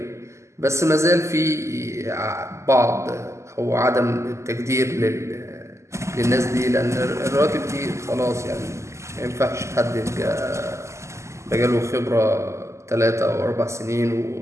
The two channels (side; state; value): left; late; 0.13 ms